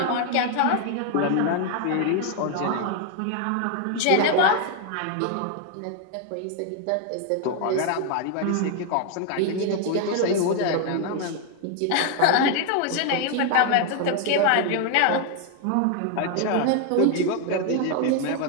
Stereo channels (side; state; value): both; different; correlation 0.00